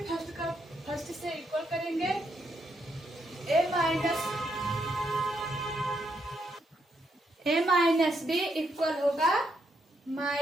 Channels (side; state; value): both; normal; correlation 0.78